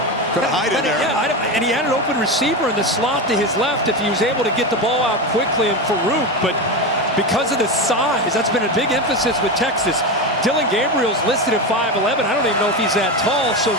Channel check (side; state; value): both; normal; correlation 0.18